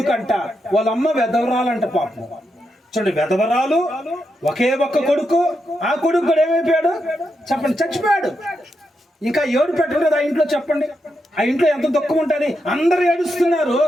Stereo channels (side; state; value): both; normal; correlation 0.84